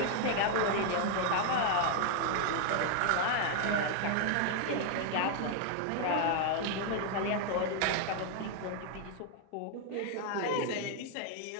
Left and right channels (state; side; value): different; both; correlation 0.00